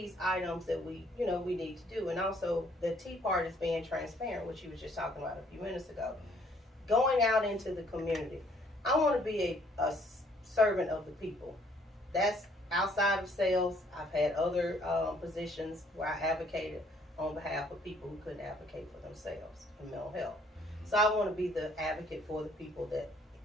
items that we need to do. And also the T part is being transparent, which you was just talking about a few minutes ago. Going out into the community. I want to be a servant of the people. That's outside of sales. I've had other positions where I advocated on behalf of people who couldn't advocate for themselves in mental health. So I want to be the advocate for the people that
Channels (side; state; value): both; normal; correlation 0.63